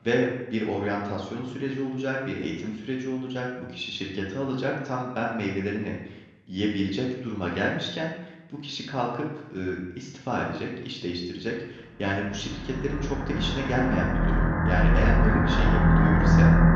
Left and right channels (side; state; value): both; identical; correlation 1.00